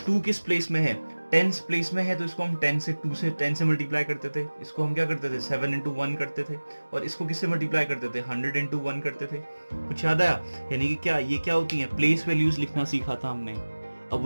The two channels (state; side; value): inverted; both; correlation -1.00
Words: 2 किस प्लेस में है, टेंस प्लेस में है, तो इसको हम 10 से मल्टीप्लाई करते थे. इसको हम क्या करते थे, 7 into 1 करते थे. और इसको किससे मल्टीप्लाई करते थे, 100 into 1 करते थे. कुछ याद आया, यानी कि क्या ये क्या होती है, प्लेस वैल्यूज लिखना सीखा था हमने, अब